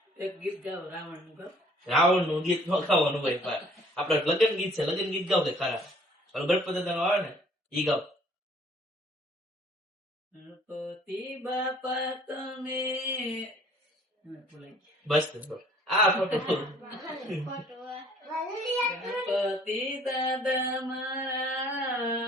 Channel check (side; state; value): both; normal; correlation 0.57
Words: એક ગીત ગાવ રાવણ નું ગાવ. રાવણ નું ગીત નો ગાવાનું હોય. આપડે લગ્ન ગીત છે, લગ્ન ગીત ગાવ કે ખરા. ગણપતિ દાદા નું આવે ને ઈ ગાવ. ગણપતિ બાપા તમે બસ આ ફોટો ગણપતિ દાદા મારા